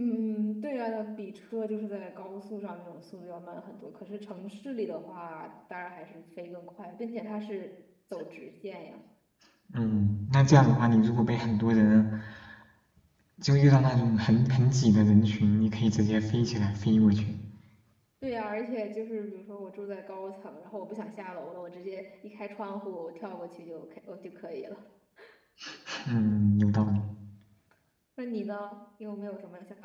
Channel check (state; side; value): identical; both; correlation 1.00